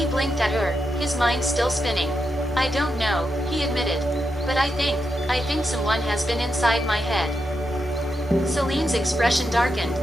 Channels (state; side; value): normal; both; correlation 0.85